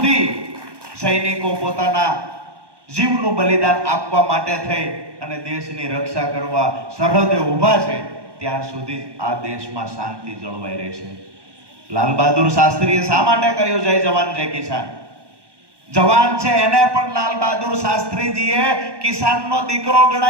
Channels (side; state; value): left; late; 1.2 ms